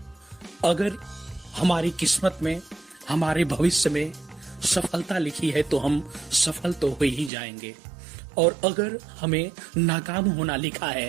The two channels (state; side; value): drops out; left; at 7.3 s